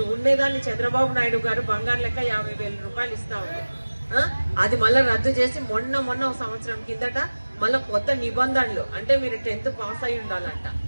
ఉండేదాన్ని చంద్రబాబు నాయుడు గారు బంగారు లెక్క 50,000 రూపాయలు ఇస్తా ఉంది. అది మళ్ళీ రద్దు చేసి మొన్న ఒక సంవత్సరం కిందట మళ్ళీ కొత్త నిబంధనలు, అంటే మీరు 10th పాస్ అయి ఉండాలంట.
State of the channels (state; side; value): inverted; both; correlation -1.00